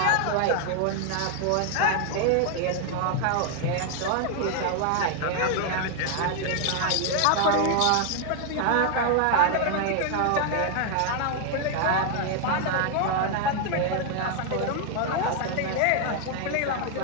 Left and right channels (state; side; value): different; both; correlation 0.00